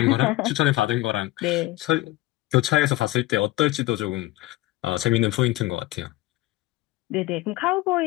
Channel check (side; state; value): right; quieter; 18.3 dB